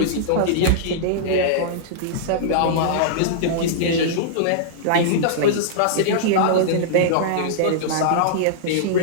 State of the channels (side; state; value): both; different; correlation -0.02